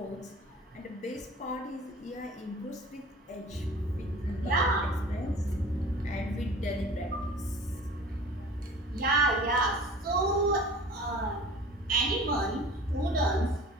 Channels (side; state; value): both; normal; correlation 0.42